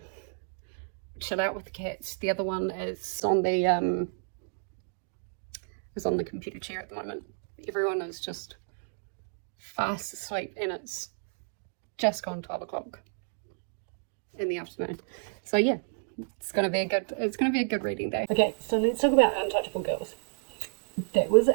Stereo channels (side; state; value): left; silent; digital silence